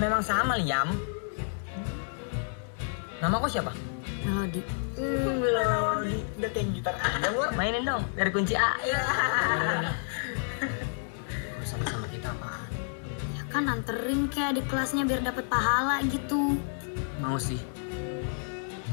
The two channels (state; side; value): silent; right; 58 dB below the other